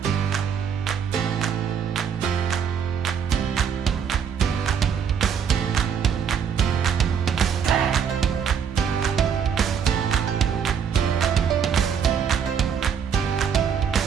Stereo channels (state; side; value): quieter; left; 7.4 dB